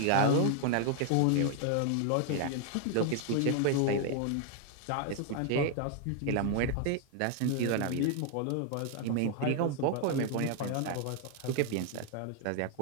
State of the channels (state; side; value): different; both; correlation 0.00